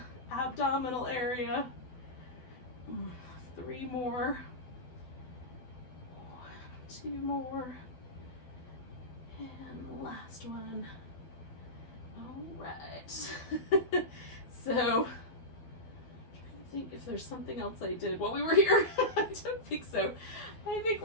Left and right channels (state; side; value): late; right; 12 ms